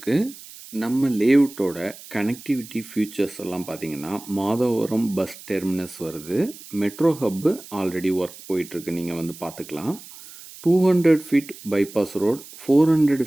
நம்ம லேஅவுட்டோட கனெக்டிவிட்டி ஃபியூச்சர்ஸ் எல்லாம் பார்த்தீங்கன்னா, மாதவரம் பஸ் டெர்மினஸ் வருது. மெட்ரோ ஹப்பு ஆல்ரெடி ஒர்க் போயிட்டுருக்கு, நீங்கள் வந்து பார்த்துக்கலாம். 200 feet bypass road,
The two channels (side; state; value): right; noise; hiss, 17 dB below the sound